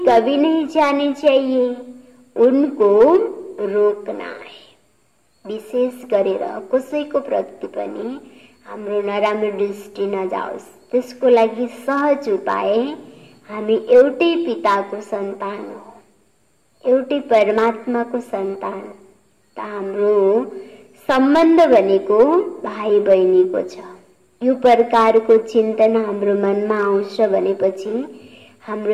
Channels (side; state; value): both; identical; correlation 1.00